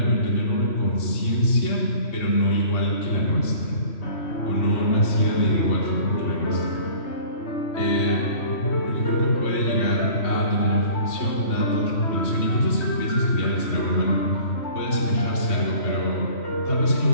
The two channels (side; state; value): right; late; 3.1 ms